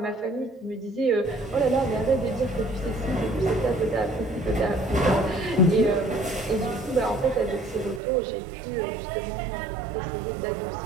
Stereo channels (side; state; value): left; drops out; at 8.0 s